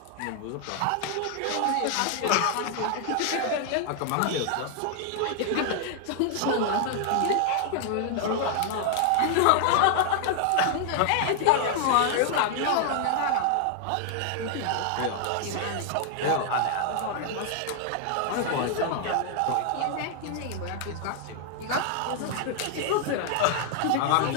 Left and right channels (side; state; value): both; different; correlation 0.00